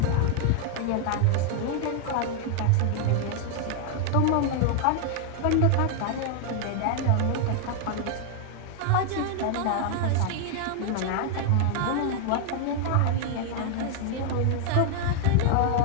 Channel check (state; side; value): different; both; correlation 0.00